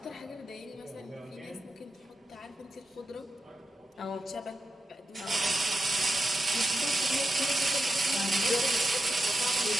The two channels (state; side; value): normal; both; correlation 0.88